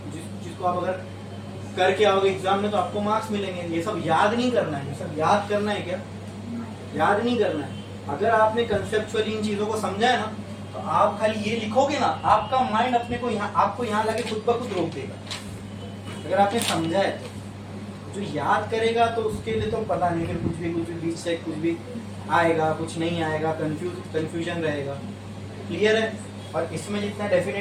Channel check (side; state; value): both; identical; correlation 1.00